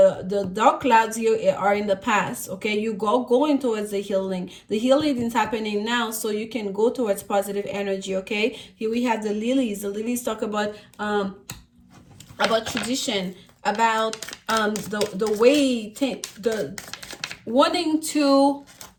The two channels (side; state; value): both; identical; correlation 1.00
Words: dark clouds here are in the past. Okay, you going towards the healing. The healing is happening now, so you can go towards positive energy. Okay, here we have the lilies. The lilies talk about tradition, about the way the wanting to